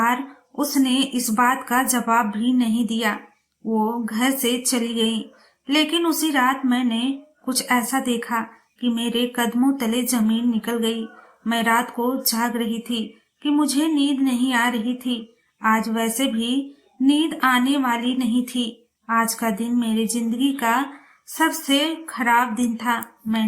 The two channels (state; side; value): identical; both; correlation 1.00